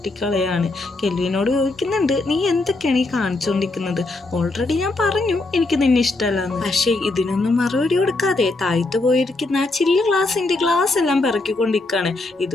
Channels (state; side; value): quieter; right; 3.1 dB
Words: കെൽവിനോട് ചോദിക്കുന്നുണ്ട്, നീ എന്തൊക്കെയാണ് ഈ കാണിച്ചുകൊണ്ടിരിക്കുന്നത്? ഓൾറെഡി ഞാൻ പറഞ്ഞു എനിക്ക് നിന്നെ ഇഷ്ടമല്ലാന്ന്. പക്ഷേ ഇതിനൊന്നും മറുപടി കൊടുക്കാതെ താഴ്ത്തു പോയിരിക്കുന്ന ആ ചില്ല് ഗ്ലാസ് എല്ലാം പിറക്കിക്കൊണ്ടിരിക്കുകയാണ്.